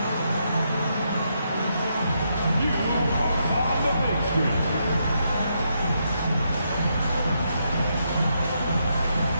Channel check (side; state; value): both; inverted; correlation -0.79